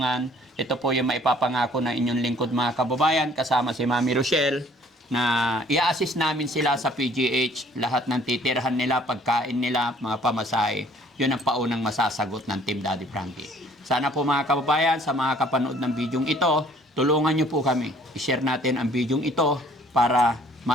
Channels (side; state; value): both; normal; correlation 0.57